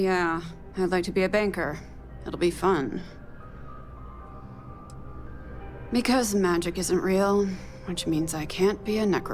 yeah, I'd like to be a banker. It'll be fun. Because magic isn't real, which means I can't be a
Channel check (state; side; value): identical; both; correlation 1.00